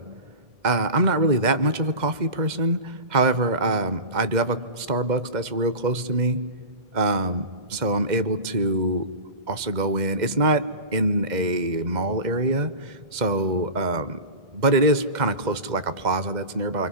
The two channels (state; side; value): late; left; 2.0 ms